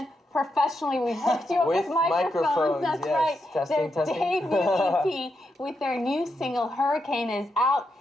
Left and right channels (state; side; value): normal; both; correlation 0.83